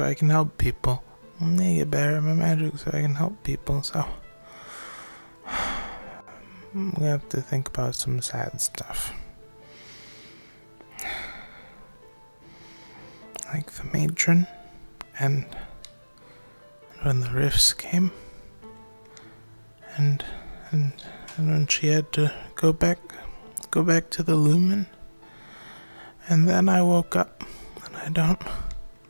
I can help people. I need to get better at my magic so I can help people, so we have to think about some sad stuff. Like the matron, and when the rifts came, and when she had to go back to the lumen, and then I woke up, and I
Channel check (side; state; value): both; inverted; correlation -1.00